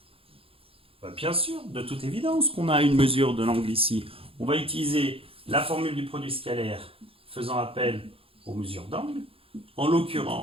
Bien sûr, de toute évidence qu'on a une mesure de l'angle ici. On va utiliser la formule du produit scalaire faisant appel aux mesures d'angle. En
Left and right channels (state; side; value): late; left; 0.27 ms